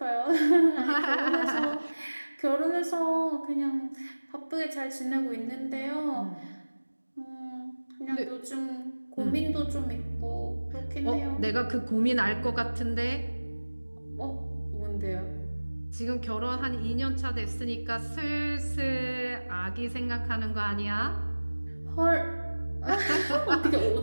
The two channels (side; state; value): both; inverted; correlation -1.00